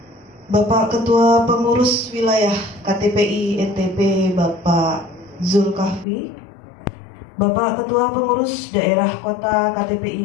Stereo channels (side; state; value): right; drops out; at 6.1 s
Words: Bapak Ketua Pengurus Wilayah KTPI NTB Bapak Zulkafli, Bapak Ketua Pengurus Daerah Kota